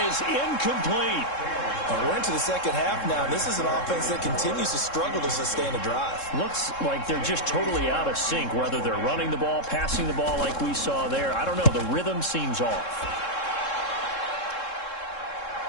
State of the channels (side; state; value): right; late; 3.7 ms